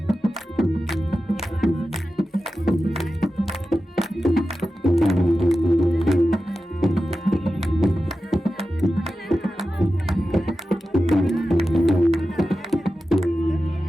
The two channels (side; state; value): both; normal; correlation 0.93